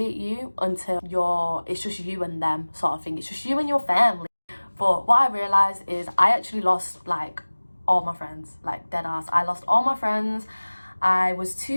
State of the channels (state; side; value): inverted; both; correlation -1.00